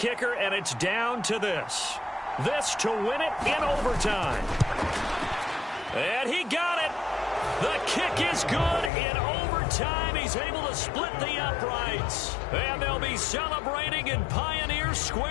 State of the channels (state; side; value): drops out; right; at 8.9 s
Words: and it's down to this. This to win it in overtime. And he got it. The kick is good in overtime. He's able to split the uprights. And they'll be celebrating in Pioneer